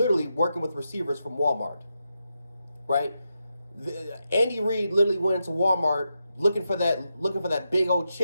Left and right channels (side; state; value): both; inverted; correlation -0.86